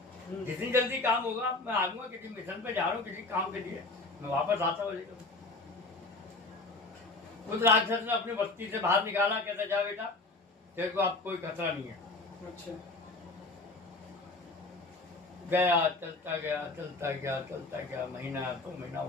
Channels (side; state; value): right; quieter; 3.3 dB